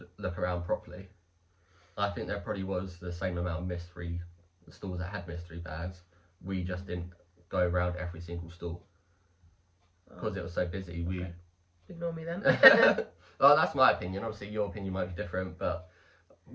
look around properly. I think there probably was the same amount of mystery stalls that had mystery bags. We just didn't go around every single stall because it was so busy. Okay. Ignore me then. Well, that's my opinion. Obviously, your opinion might be different, but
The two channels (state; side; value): identical; both; correlation 1.00